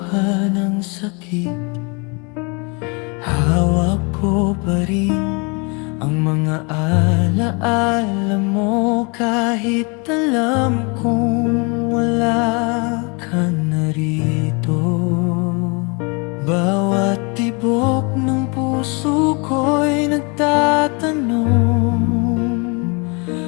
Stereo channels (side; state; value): right; quieter; 31.7 dB